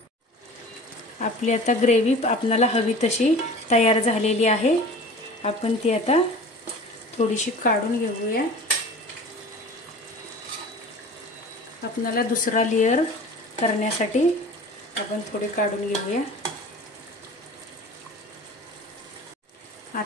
आपली आता ग्रेव्ही आपल्याला हवी तशी तयार झालेली आहे. आपण ती आता थोडीशी काढून घेऊया. आपल्याला दुसरा लेयर करण्यासाठी आपण थोडी काढून घेऊया.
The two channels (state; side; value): normal; both; correlation 0.40